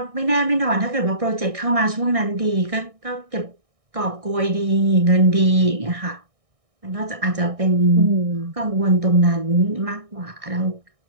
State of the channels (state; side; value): late; left; 1.6 ms